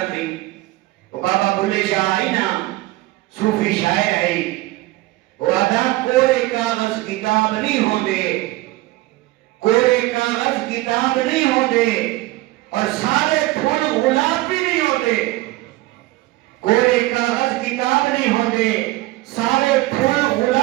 بھی. وہ بابا بلے شاہ آئی نا صوفی شاعر آئی، وہ آدھا کوئی کاغذ کتاب نہیں ہوں دے، کوئی کاغذ کتاب نہیں ہوں دے اور سارے پھول غلاب بھی نہیں ہوں دے. کوئی کاغذ کتاب نہیں ہوں دے، سارے پھول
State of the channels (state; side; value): quieter; left; 18.7 dB